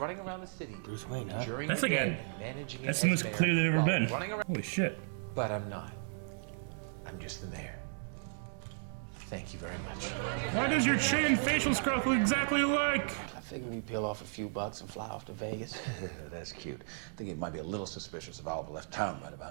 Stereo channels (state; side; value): silent; left; digital silence